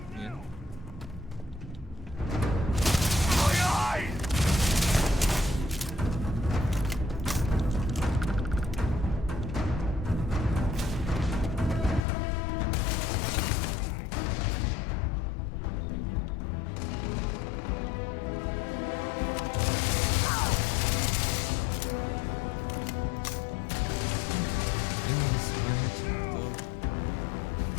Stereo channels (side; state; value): right; drops out; at 12.1 s